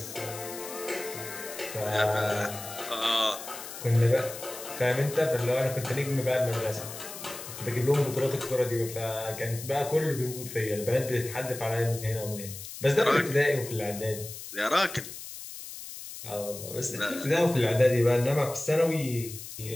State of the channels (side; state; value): left; noise; hiss, 11 dB below the sound